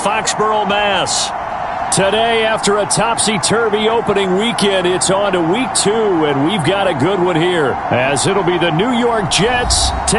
Mass. Today, after a topsy-turvy opening weekend, it's on to Week 2, and we've got a good one here, as it'll be the New York Jets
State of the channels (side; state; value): both; identical; correlation 1.00